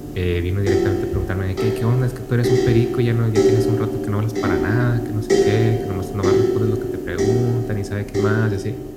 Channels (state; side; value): identical; both; correlation 1.00